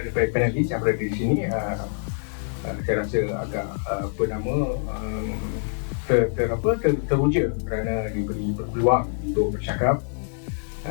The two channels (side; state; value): right; silent; digital silence